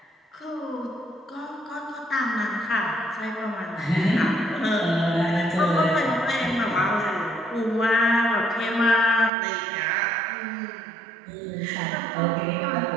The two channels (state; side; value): drops out; left; at 9.3 s